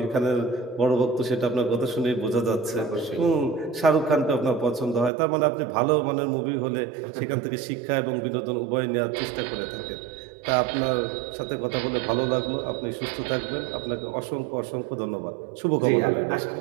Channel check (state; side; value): drops out; left; at 5.1 s